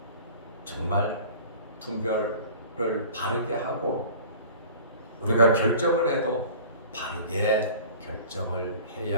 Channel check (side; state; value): both; inverted; correlation -0.43